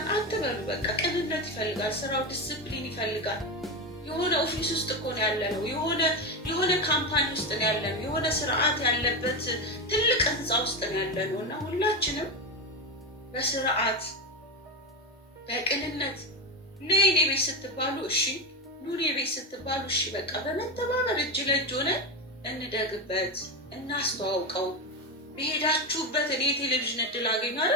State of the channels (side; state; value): both; normal; correlation 0.16